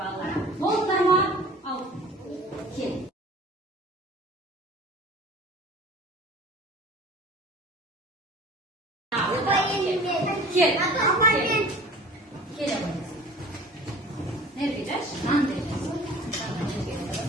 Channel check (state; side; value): normal; both; correlation 0.44